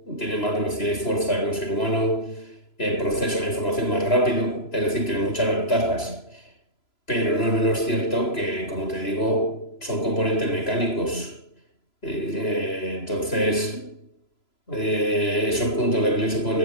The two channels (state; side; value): late; right; 3.0 ms